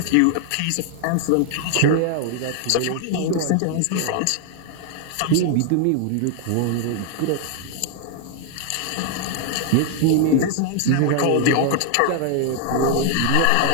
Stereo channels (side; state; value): both; different; correlation 0.00